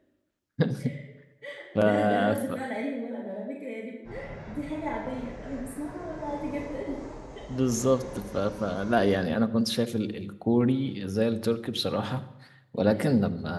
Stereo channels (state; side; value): identical; both; correlation 1.00